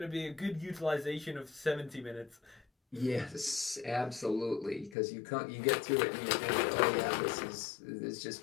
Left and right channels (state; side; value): drops out; right; at 5.0 s